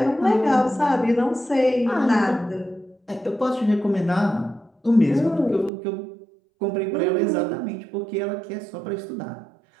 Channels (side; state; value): left; drops out; at 5.7 s